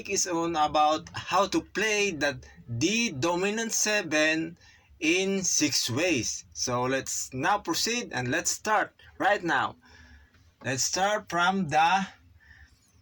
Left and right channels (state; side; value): identical; both; correlation 1.00